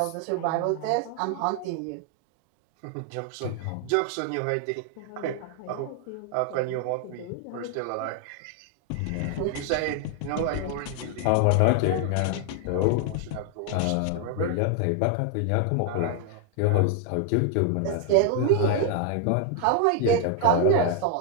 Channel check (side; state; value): both; different; correlation 0.00